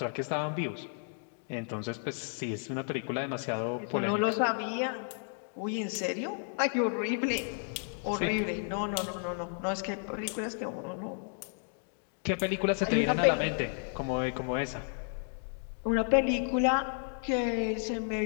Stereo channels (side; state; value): right; silent; 56 dB below the other